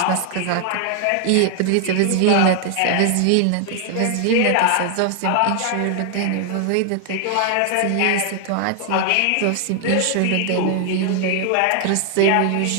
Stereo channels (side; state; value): both; different; correlation 0.00